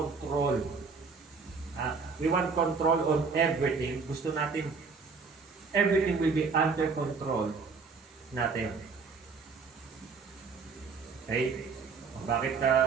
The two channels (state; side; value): quieter; left; 4.9 dB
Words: We want control on everything. Gusto natin everything will be under control natin. Okay?